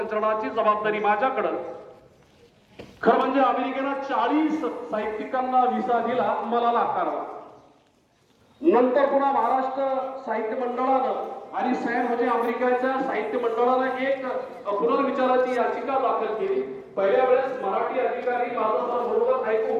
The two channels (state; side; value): identical; both; correlation 1.00